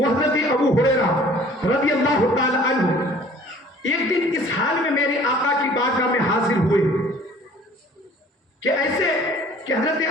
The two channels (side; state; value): both; normal; correlation 0.51